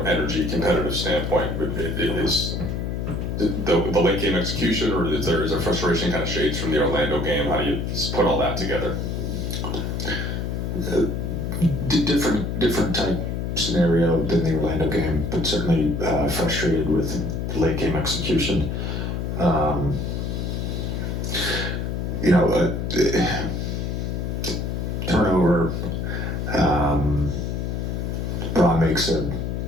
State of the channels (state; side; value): noise; left; hum, 2 dB below the sound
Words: competitive standpoint. But is the late game execution, or is there frustration kind of shades from the Orlando game? How do you put all that together? Different type scenario than the Orlando game, but certainly frustrated with late game execution. Turnover. Braun makes a